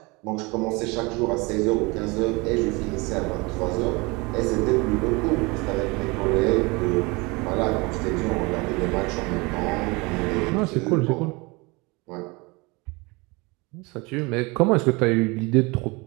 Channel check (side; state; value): left; quieter; 26.1 dB